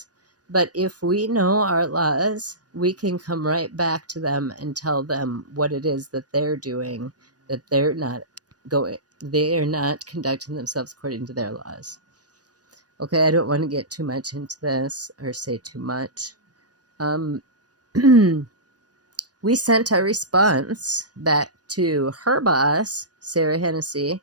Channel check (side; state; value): left; late; 0.68 ms